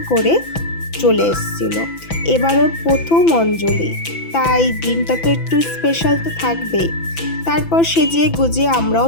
করে চলে এসেছিল। এবার ওর প্রথম অঞ্জলি, তাই দিনটা তো একটু স্পেশাল তো থাকবেই। তারপর সেজে গুজিয়ে আমরাও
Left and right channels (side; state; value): right; late; 6.0 ms